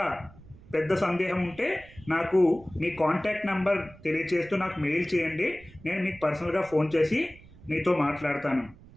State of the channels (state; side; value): noise; right; rumble, 22 dB below the sound